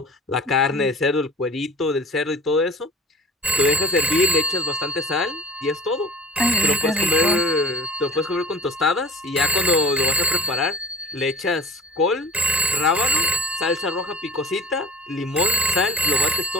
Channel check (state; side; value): normal; both; correlation 0.41